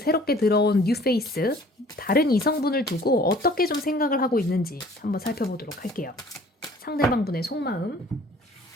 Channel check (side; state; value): both; normal; correlation 0.52